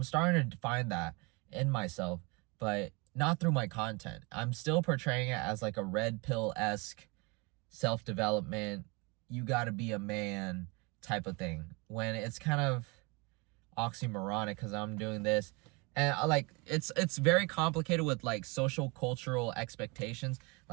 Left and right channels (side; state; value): left; quieter; 28.2 dB